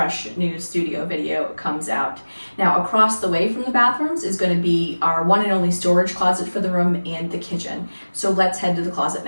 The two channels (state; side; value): inverted; both; correlation -1.00